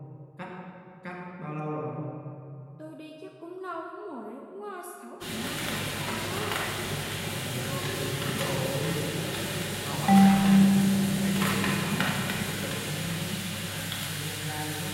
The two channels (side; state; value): both; identical; correlation 1.00